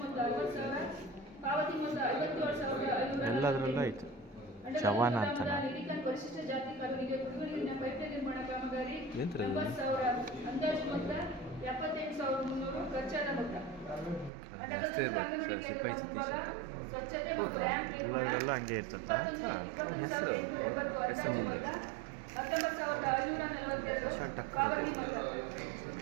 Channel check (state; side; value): drops out; left; at 14.3 s